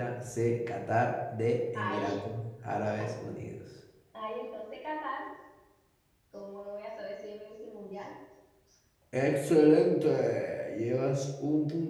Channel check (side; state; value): both; identical; correlation 1.00